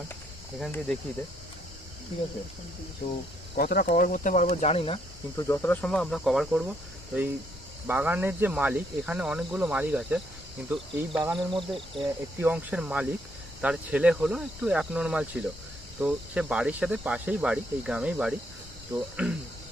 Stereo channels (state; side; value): normal; both; correlation 0.72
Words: এখান দিয়ে দেখিয়ে দে, ঠিক আছে? তো কতটা কভার করতে পারবো জানি না, কিন্তু যতটা সম্ভব আমরা কভার করব। তো এই বাগানের যে মালিক, এখানে অনেকগুলো মালিক আছে, কিন্তু এই বাগানের মধ্যে একটি অংশের মালিক, তার ছেলে হলো একটু অ্যাবনর্মাল ছিল। তো সে বাড়ির সাথে পাশেই বাড়ি, এই গ্রামেই বাড়ি। তো